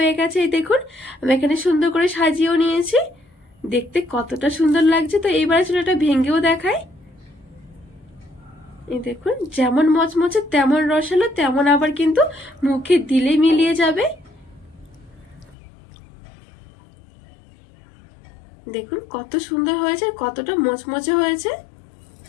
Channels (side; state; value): right; drops out; at 15.6 s